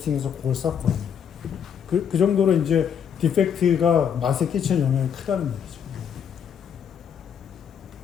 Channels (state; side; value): quieter; right; 8.0 dB